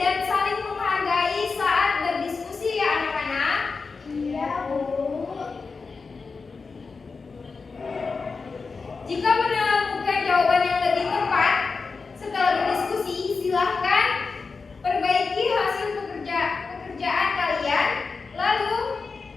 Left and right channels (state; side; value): quieter; right; 4.6 dB